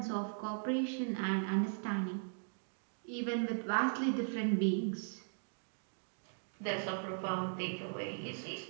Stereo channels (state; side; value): silent; left; digital silence